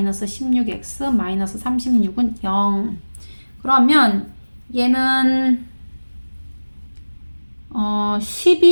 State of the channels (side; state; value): both; inverted; correlation -1.00